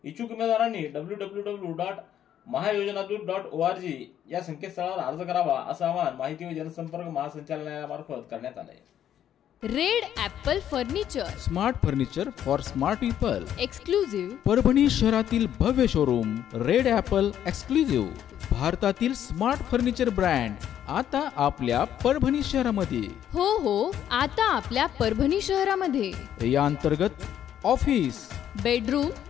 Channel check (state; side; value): quieter; right; 10.4 dB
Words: इच्छुक उमेदवारांनी www.mahayojanadut.org या संकेतस्थळावर अर्ज करावा असं आवाहन माहिती व जनसंपर्क महासंचालनालयामार्फत करण्यात आलं आहे. Red Apple furniture, smart furniture for smart people. Exclusive. Parbhani शहरातील भव्य शोरूम रेड ॲपल एक्सक्लुझिव्ह. भारतातील स्मार्ट फर्निचर ब्रँड आता आपल्या परभणी शहरामध्ये. हो, आता आपल्या परभणी शहरामध्ये. या अंतर्गत ऑफिस, बेडरूम,